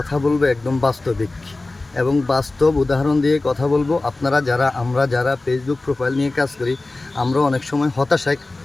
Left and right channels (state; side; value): quieter; right; 3.1 dB